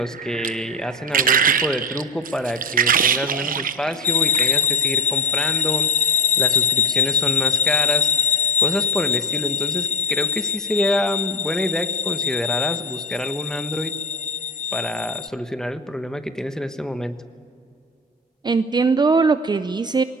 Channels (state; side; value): normal; both; correlation 0.17